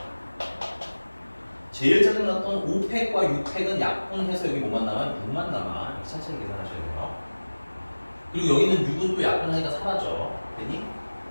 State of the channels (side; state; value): both; inverted; correlation -1.00